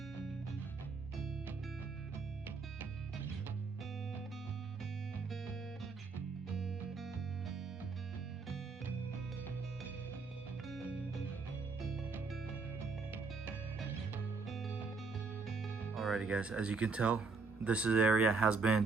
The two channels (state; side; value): quieter; left; 4.3 dB